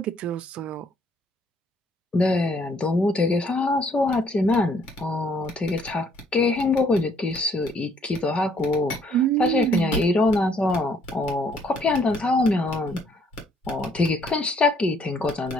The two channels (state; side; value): normal; both; correlation 0.65